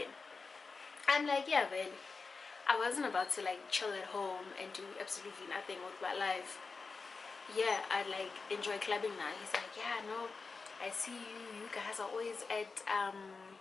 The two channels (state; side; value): quieter; right; 4.4 dB